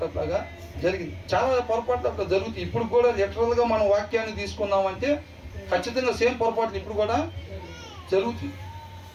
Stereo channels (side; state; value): both; identical; correlation 1.00